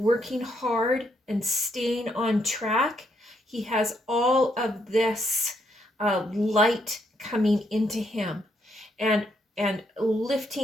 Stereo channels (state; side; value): normal; both; correlation 0.75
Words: hard and staying on track, he has all of this light coming into him and